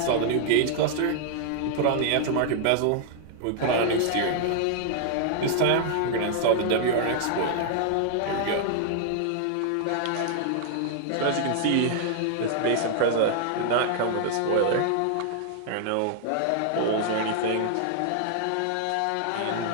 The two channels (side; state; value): both; different; correlation -0.01